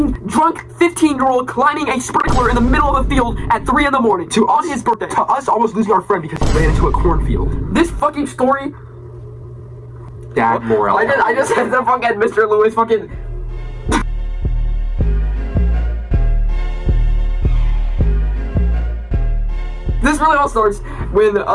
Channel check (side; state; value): both; identical; correlation 1.00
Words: drunk 15-year-old climbing a sprinkler in the middle of a field at 3 in the morning on his birthday, to us almost losing our friend because he ran into a cornfield. This fucking story. Dad moral. I just said the fucking Mr. Lewis fucking. This really all starts when